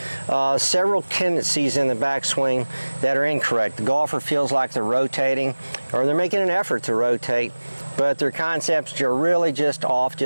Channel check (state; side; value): inverted; both; correlation -1.00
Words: several tendencies in the backswing that are incorrect. The golfer feels like they're rotating or they're making an effort to rotate, but their concepts are really just off